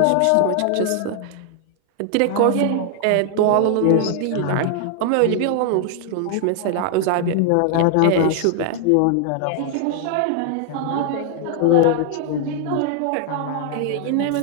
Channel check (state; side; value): different; both; correlation 0.00